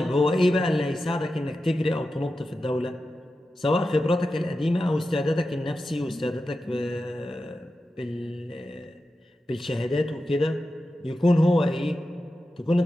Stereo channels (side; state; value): both; normal; correlation 0.91